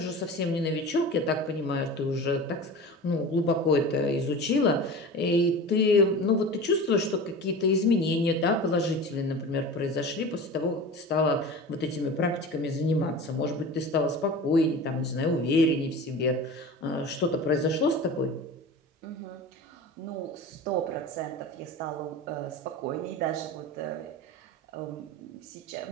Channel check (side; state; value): both; normal; correlation 0.34